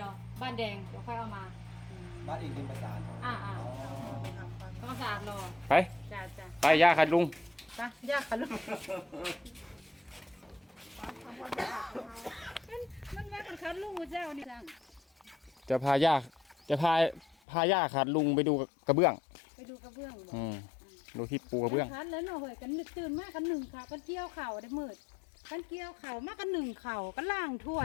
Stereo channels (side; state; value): right; drops out; at 17.4 s